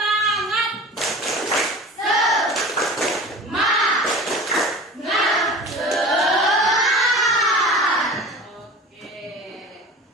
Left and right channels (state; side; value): normal; both; correlation 0.37